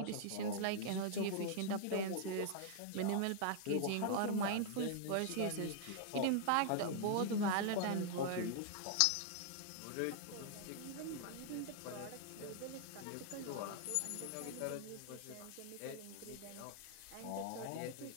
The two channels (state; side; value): different; both; correlation -0.01